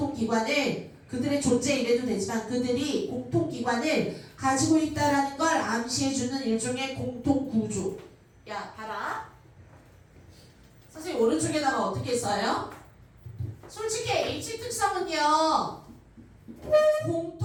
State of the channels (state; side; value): identical; both; correlation 1.00